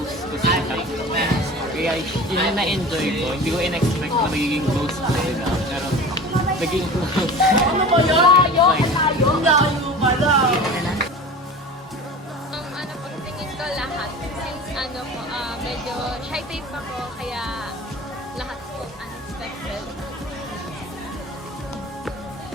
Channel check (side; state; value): both; normal; correlation 0.36